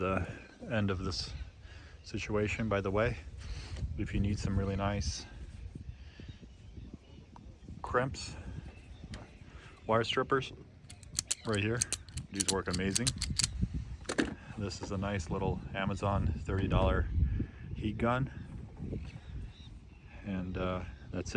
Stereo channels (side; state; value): both; identical; correlation 1.00